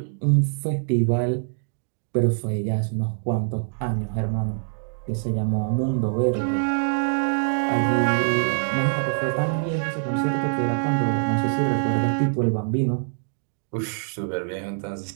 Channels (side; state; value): left; silent; digital silence